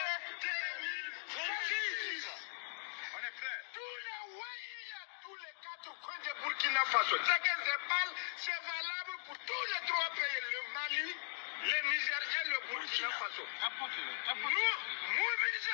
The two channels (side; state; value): right; silent; digital silence